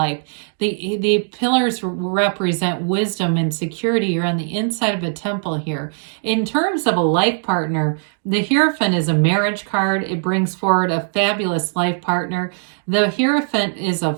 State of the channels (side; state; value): left; silent; 57 dB below the other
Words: The pillars represent wisdom and security. You're on the inside of a temple here. In terms of a life partner, the Hierophant is a marriage card. It brings forward a fabulous life partner. The Hierophant is